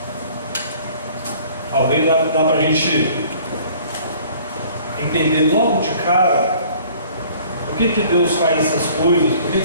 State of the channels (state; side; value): inverted; both; correlation -0.53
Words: Talvez dá para a gente entender logo de cara por que Deus faz essas coisas, por que